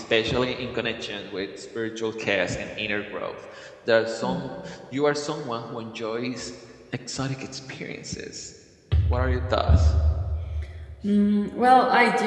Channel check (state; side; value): identical; both; correlation 1.00